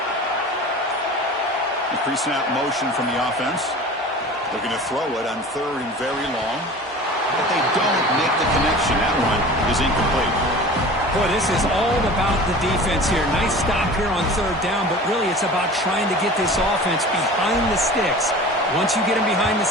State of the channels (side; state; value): both; normal; correlation 0.39